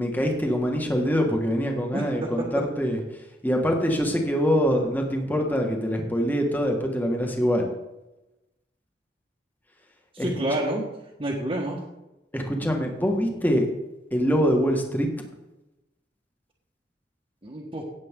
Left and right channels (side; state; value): both; normal; correlation 0.75